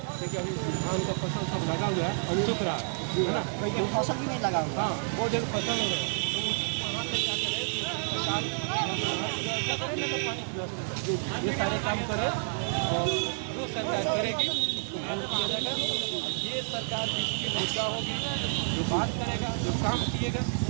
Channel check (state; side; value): silent; left; 58 dB below the other